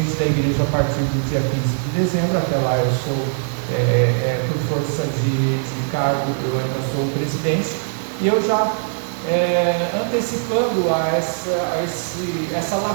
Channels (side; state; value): left; silent; 57 dB below the other